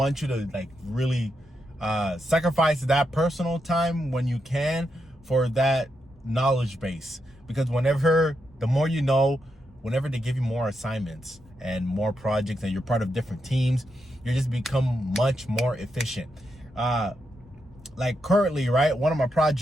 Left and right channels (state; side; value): normal; both; correlation 0.84